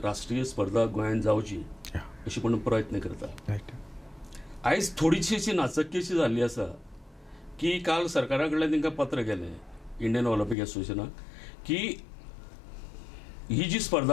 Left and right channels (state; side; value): drops out; right; at 10.6 s